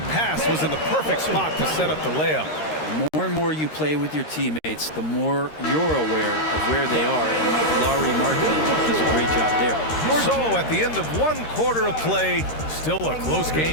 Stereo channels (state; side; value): late; right; 13 ms